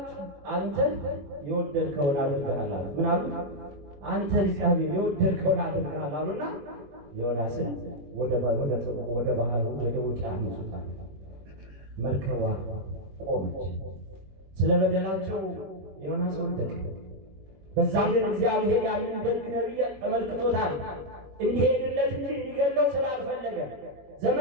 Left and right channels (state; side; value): late; left; 21 ms